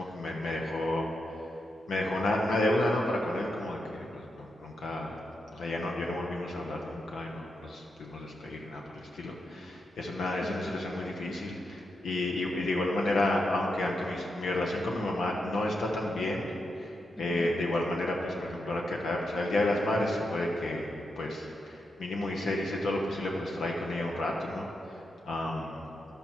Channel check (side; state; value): both; normal; correlation 0.85